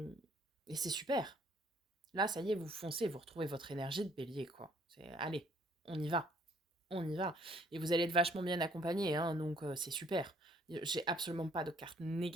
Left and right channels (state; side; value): normal; both; correlation 0.62